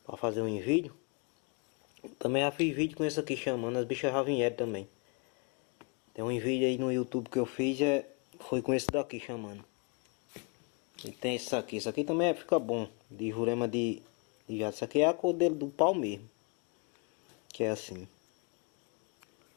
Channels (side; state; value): right; quieter; 33.5 dB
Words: pra fazer um vídeo. Também já fiz vídeo com esse aqui chamando. As bichas já vieram também. Tem um vídeo aí no YouTube que eu fiz, foi com esse daqui chamando. E tem esse aqui. Esse aqui também fica bom. De Jurema de Viado. Esse aqui é a cor dele do pau mesmo. Que é assim.